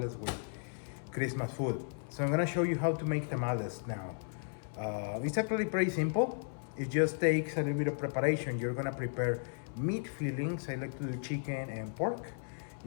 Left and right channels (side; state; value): right; silent; 54 dB below the other